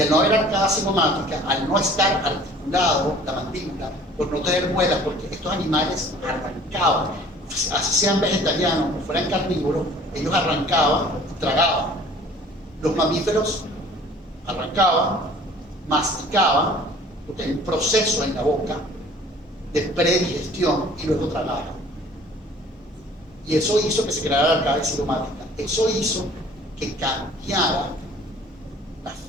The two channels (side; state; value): both; normal; correlation 0.51